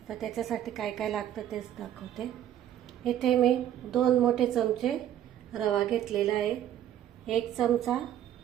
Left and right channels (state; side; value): quieter; left; 11.3 dB